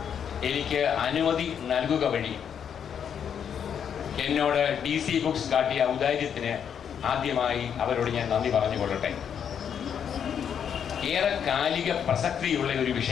എനിക്ക് അനുമതി നൽകുക വഴി എന്നോട് DC ബുക്സ് കാട്ടിയ ഔദാര്യത്തിന് ആദ്യമായി അവരോട് ഞാൻ നന്ദി പറഞ്ഞുകൊള്ളട്ടെ. ഏറെ കാലിക പ്രസക്തിയുള്ള ഒരു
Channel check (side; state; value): right; quieter; 8.1 dB